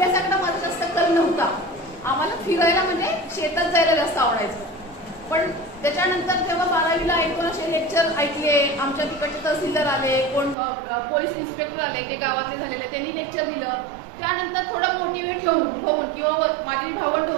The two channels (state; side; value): drops out; left; at 10.6 s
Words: माझा जास्त कल नव्हता। आम्हाला फिरायला म्हणजे शेतात जायला जास्त आवडायचं। पण त्याच्यानंतर जेव्हा 12वीला 1-2 असे लेक्चर ऐकले, आमच्या तिकडचे तहसीलदार आले, कोण पोलीस इन्स्पेक्टर आले की गावातले झालेले, त्यांनी लेक्चर दिलं। त्यानंतर थोडं मोटिवेट होऊन किंवा माझी भावंड